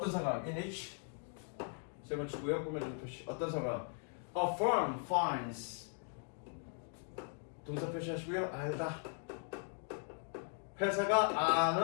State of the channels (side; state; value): right; silent; 52 dB below the other